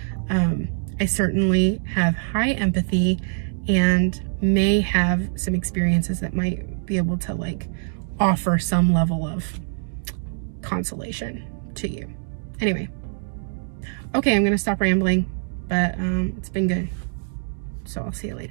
I certainly have high empathy and may have some experiences that might be able to offer some level of consolation to you. Anyway. Okay, I'm going to stop rambling, but it's been good. So I'll see you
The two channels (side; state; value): left; silent; digital silence